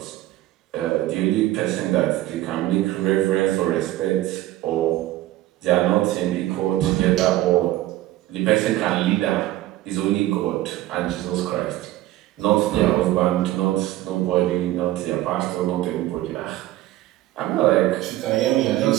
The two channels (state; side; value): quieter; left; 15.5 dB